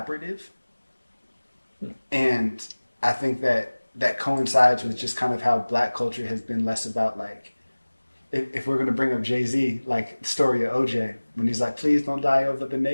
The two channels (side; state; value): both; inverted; correlation -1.00